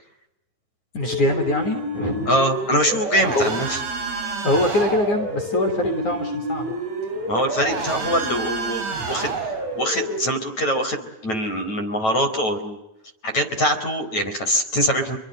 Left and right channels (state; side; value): late; right; 9.2 ms